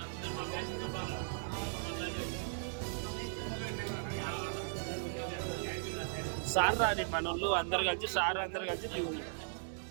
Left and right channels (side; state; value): left; silent; digital silence